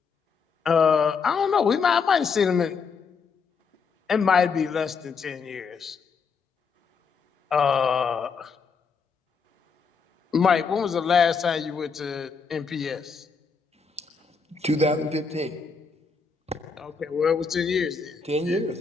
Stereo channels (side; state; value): right; quieter; 5.4 dB